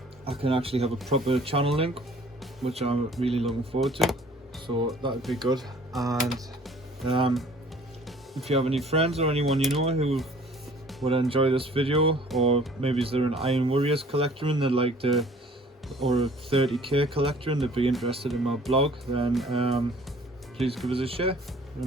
I can actually have a proper channel link, which I'm really looking forward to. So that would be good. And if you have any friends or anyone you know who would enjoy this video, or maybe is there an Iron Warriors collector and they'd like to, or a 30k collector and they'd be interested in my blog, then please give us a share,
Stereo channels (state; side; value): normal; both; correlation 0.53